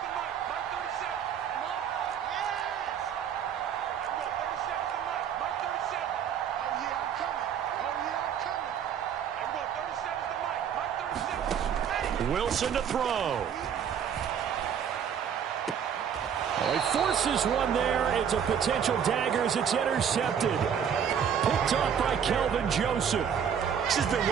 Wilson to throw. Oh, he forces one there. It's a potential dagger as it's intercepted. Picked off by Kelvin Joseph. It's just been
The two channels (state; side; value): quieter; left; 8.1 dB